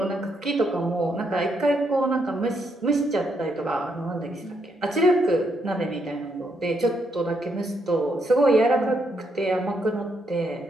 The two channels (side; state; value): both; normal; correlation 0.77